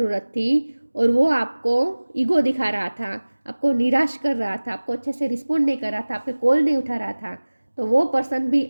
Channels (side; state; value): both; inverted; correlation -1.00